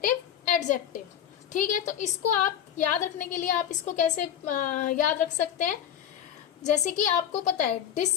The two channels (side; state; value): right; quieter; 9.6 dB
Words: एडजेक्टिव। ठीक है, तो इसको आप याद रखने के लिए आप इसको कैसे याद रख सकते हैं। जैसे कि आपको पता है